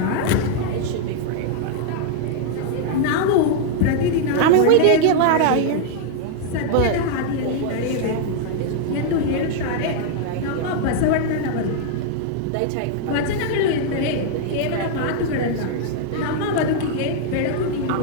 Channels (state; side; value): different; both; correlation -0.01